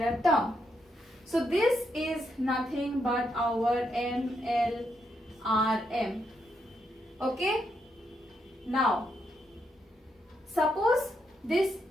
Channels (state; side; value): normal; both; correlation 0.79